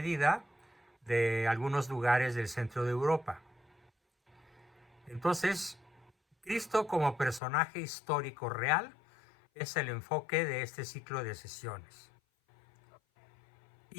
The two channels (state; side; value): drops out; right; at 7.4 s